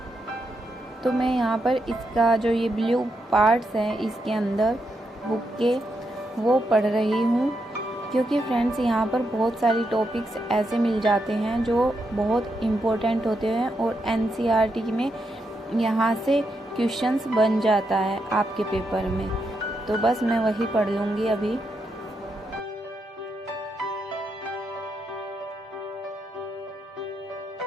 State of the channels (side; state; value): both; normal; correlation 0.82